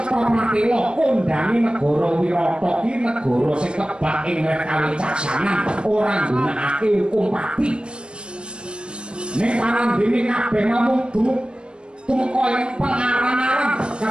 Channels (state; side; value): late; left; 0.054 ms